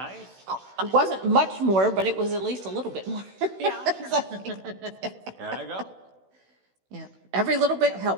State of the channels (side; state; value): left; late; 16 ms